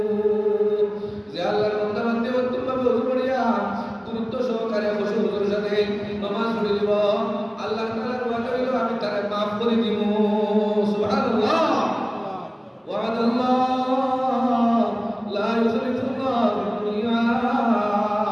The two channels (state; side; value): identical; both; correlation 1.00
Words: যে আল্লাহর বান্দা বান্দে উত্তমভাবে ওযু করিয়া গুরুত্ব সহকারে খুশু হুজুর সাথে নামাজ পড়ে দিব আল্লাহ তাআলার ওয়াদা হইল আমি তারে maaf করে দিব সুবহানাল্লাহ ওয়াদাল্লাহ লা ইউখলিফুল্লাহ